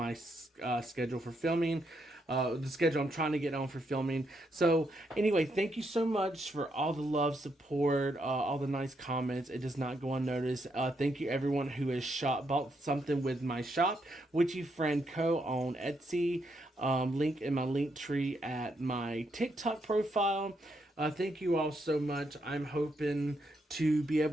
schedule for filming. The schedule I'm trying to get on for filming. So anyway, thank you so much for all the love, support, all the nice comments. It does not go unnoticed. Thank you everyone who has bought something with my shop, Witchy Friend Co. on Etsy. Link in my link tree at my TikTok profile. Thank you all so much. I'm hoping to be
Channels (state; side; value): normal; both; correlation 0.78